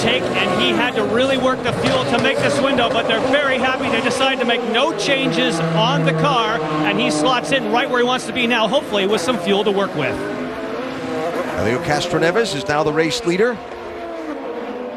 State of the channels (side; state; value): both; identical; correlation 1.00